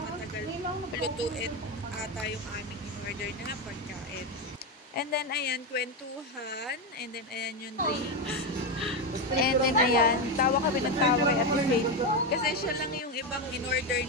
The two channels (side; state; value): both; normal; correlation 0.11